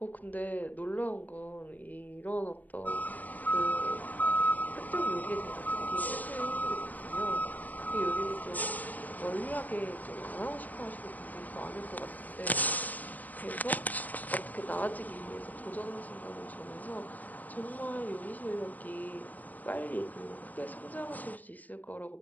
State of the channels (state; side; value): late; right; 0.081 ms